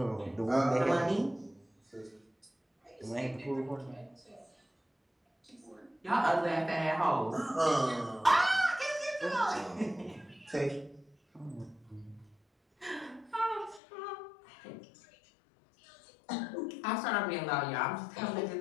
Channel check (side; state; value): right; drops out; at 13.8 s